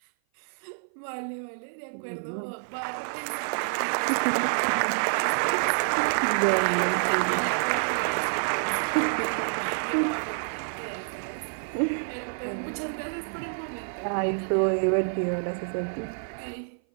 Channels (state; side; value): silent; left; 56 dB below the other